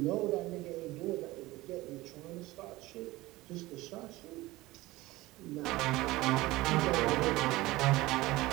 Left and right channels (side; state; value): left; quieter; 19.2 dB